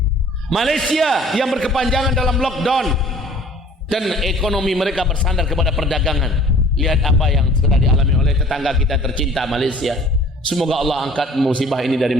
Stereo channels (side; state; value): both; normal; correlation 0.51